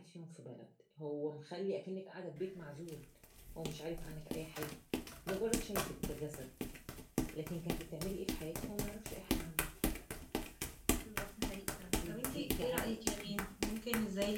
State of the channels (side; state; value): both; identical; correlation 1.00